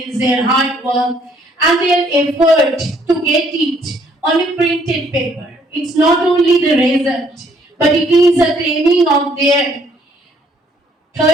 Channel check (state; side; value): normal; both; correlation 0.65